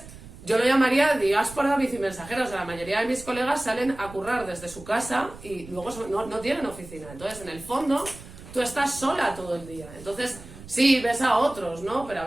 yo lo llamaría diáspora bicimensajera, o sea, la mayoría de mis colegas salen a currar desde su casa y luego no tienen oficina, entonces en el fondo tú estás sola todo el día, entonces sí, ves a otros, ¿no? Pero a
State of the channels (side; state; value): right; noise; rumble, 17 dB below the sound